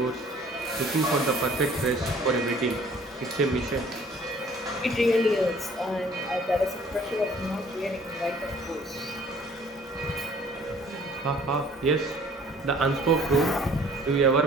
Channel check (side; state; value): both; normal; correlation 0.55